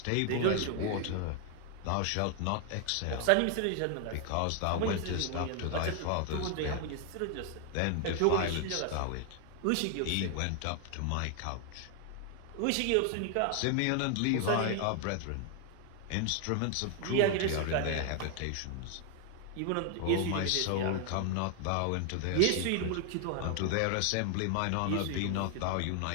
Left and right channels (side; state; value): both; different; correlation 0.00